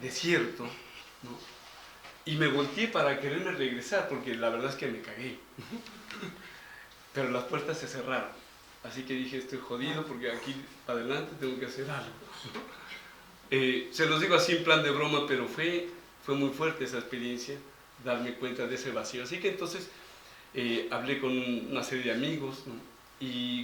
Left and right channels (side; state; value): both; identical; correlation 1.00